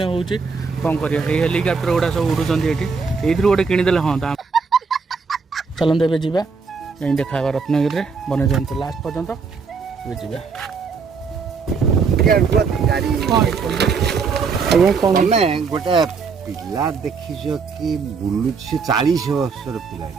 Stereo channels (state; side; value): quieter; left; 5.2 dB